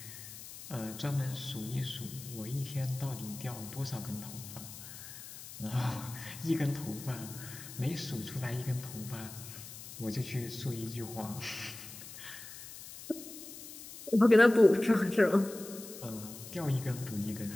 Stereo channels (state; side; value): noise; left; hiss, 13 dB below the sound